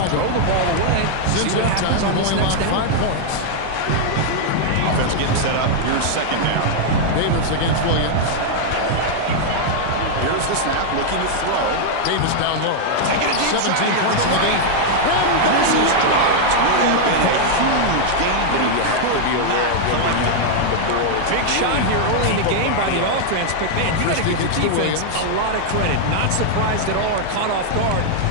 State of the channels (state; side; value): different; both; correlation 0.00